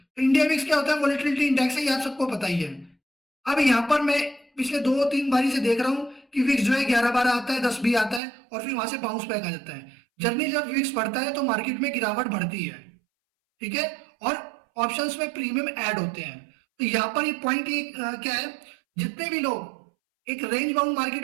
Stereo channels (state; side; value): drops out; left; at 8.2 s